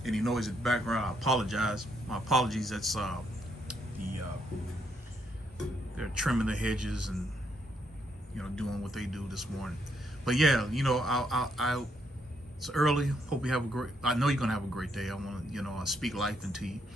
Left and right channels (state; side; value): normal; both; correlation 0.75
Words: any noise in the background, I apologize. My apologies. That's they're trimming the hedges and doing what they do this morning. But yeah, it's early. Hope you have a great. I know you're gonna have a great day. I want to speak life into you